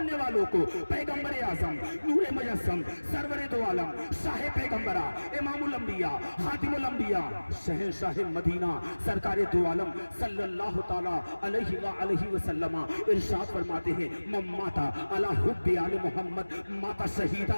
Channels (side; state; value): both; inverted; correlation -1.00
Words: والوں کو؟ پیغمبر اعظم، نور مجسم، سرور دو عالم، شاہ پیغمبرہ، امام الانبیاء، خاتم الانبیاء، شہنشاہ مدینہ، سرکار دو عالم صلی اللہ تعالیٰ علیہ وآلہ وسلم ارشاد فرماتے ہیں، من ماتا علی حب آل محمد ماتا